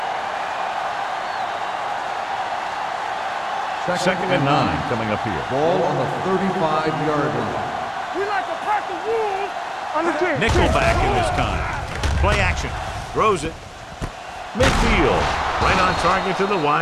Second and 9 coming up here. Ball on the 35-yard line. We like a pack of wolves on the team. Nickelback in this time. Play action. Throws it. Midfield. Right on target to the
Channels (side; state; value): both; identical; correlation 1.00